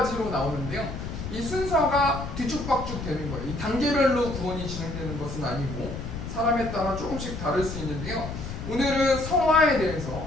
나오는데요. 이 순서가 뒤죽박죽 되는 거예요. 이 단계별로 구원이 진행되는 것은 아니고 사람에 따라 조금씩 다를 수 있는데요. 오늘은 성화에 대해서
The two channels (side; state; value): left; noise; rumble, 7 dB below the sound